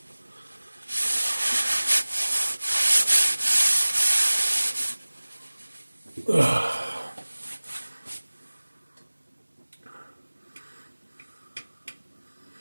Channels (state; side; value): inverted; both; correlation -1.00